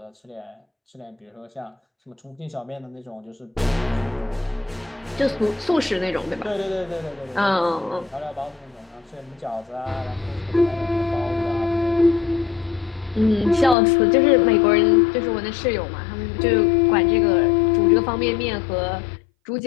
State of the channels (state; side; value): drops out; right; at 13.8 s